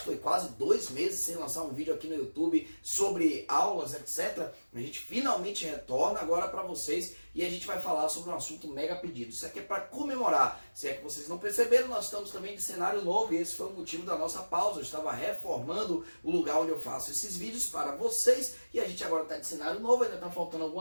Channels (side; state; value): both; inverted; correlation -1.00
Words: que foi quase 2 meses sem lançar um vídeo aqui no YouTube sobre aulas, etc. A gente finalmente retorna agora para vocês e a gente vai falar sobre um assunto mega pedido. Isso aqui é para comemorar. Se é que vocês não perceberam, nós estamos também de cenário novo e esse foi o motivo da nossa pausa. Eu estava reformando o lugar onde eu faço esses vídeos para vocês e a gente agora está de cenário novo. Ainda está faltando